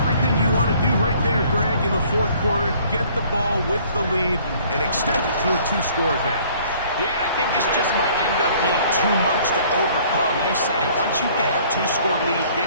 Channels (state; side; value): inverted; both; correlation -0.56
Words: you want to do right there, Greg, in the fourth quarter. Get the ball with the lead and extend it to a two-score advantage. Yeah, I think this just might end up being too much to overcome. You said it. Once you get a two-score lead